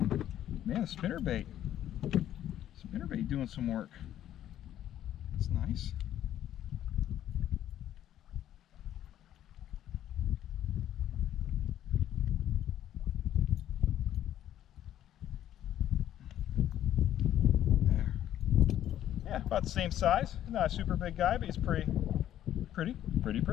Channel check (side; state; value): right; quieter; 11.7 dB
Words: Man, the spinnerbait. Spinnerbait doing some work. That's nice. There. Yeah, about the same size. Not a super big guy, but he's pretty.